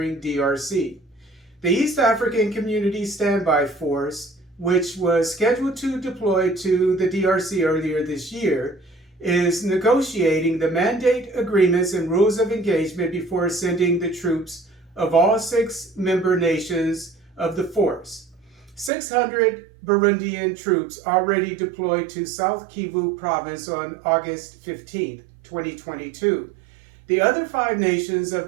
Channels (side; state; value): left; drops out; at 18.9 s